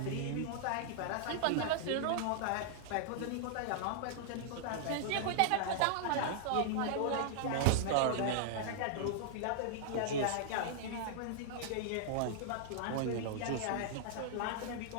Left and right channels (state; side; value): different; both; correlation -0.01